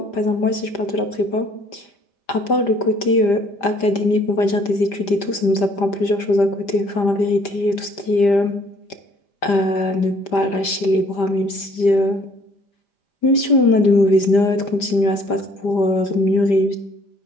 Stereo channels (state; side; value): late; right; 5.0 ms